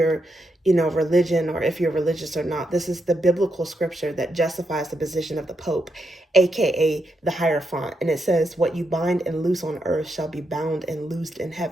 religion or if you're religious or not, this is the biblical scripture that justifies the position of the Pope, aka the Hierophant. And it says, what you bind and loose on earth shall be bound and loosed in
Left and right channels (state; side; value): normal; both; correlation 0.82